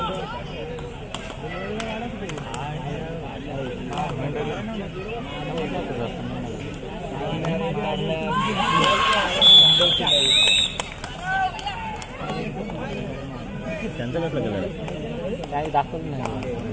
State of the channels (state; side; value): identical; both; correlation 1.00